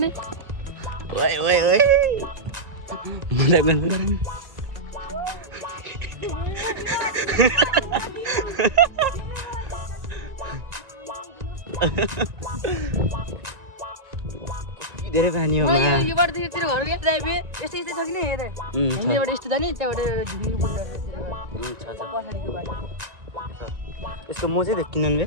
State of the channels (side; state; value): left; late; 1.9 ms